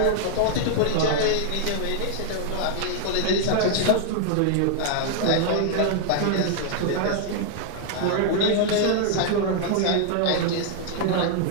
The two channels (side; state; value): both; different; correlation -0.01